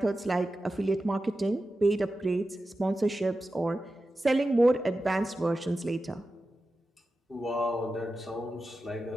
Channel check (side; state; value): both; normal; correlation 0.93